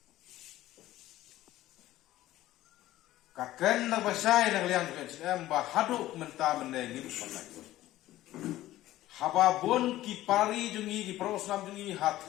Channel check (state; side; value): quieter; right; 15.2 dB